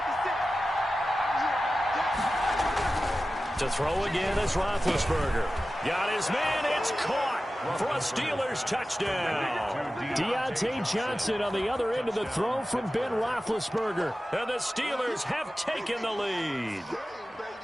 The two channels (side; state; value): both; normal; correlation 0.94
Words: 56. To throw again is Roethlisberger. Got his man, it's caught for a Steelers touchdown. Deontay Johnson on the other end of the throw from Ben Roethlisberger. And the Steelers have taken the lead.